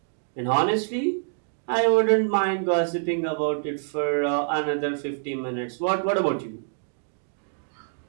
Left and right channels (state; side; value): silent; left; digital silence